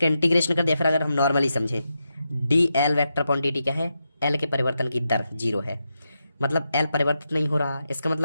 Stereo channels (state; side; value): inverted; both; correlation -0.86